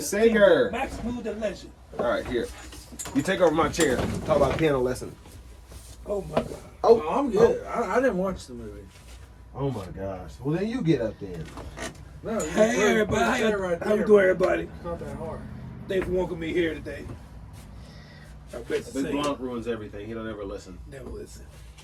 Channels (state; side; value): identical; both; correlation 1.00